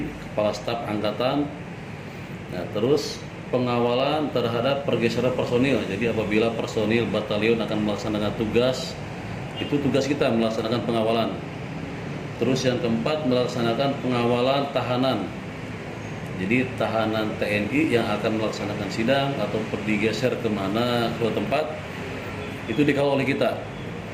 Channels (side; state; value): both; identical; correlation 1.00